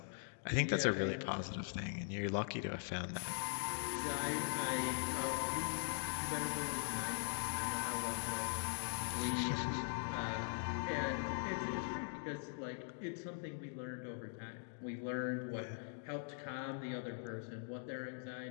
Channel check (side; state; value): right; silent; digital silence